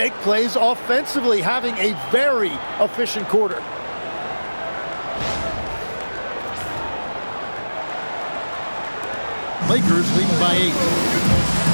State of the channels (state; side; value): inverted; both; correlation -1.00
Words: plays offensively, having a very efficient quarter. Lakers leading by 8.